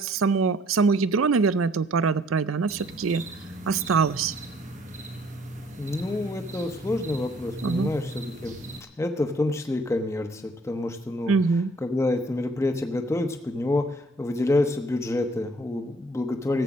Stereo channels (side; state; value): both; normal; correlation 0.59